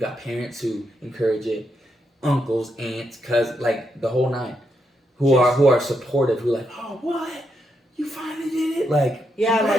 parents who encourage it, uncles, aunts, cousins, like the whole nine, who are supportive, who are like, oh, what, you finally did it, like,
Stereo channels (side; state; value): both; normal; correlation 0.81